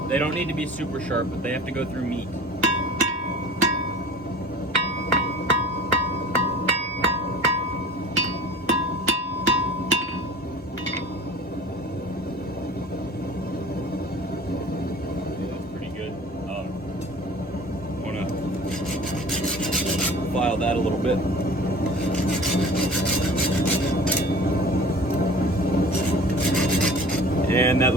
They don't need to be super sharp, but they have to go through meat. That's pretty good. I want to file that a little bit. And that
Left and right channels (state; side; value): normal; both; correlation 0.43